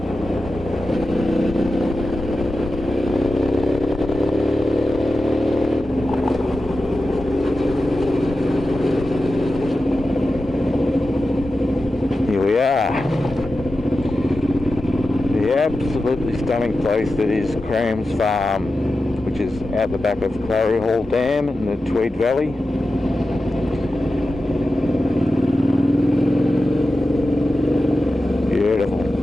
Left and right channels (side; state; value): both; normal; correlation 0.92